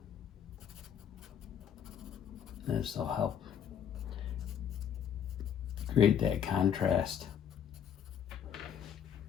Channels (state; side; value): quieter; right; 8.7 dB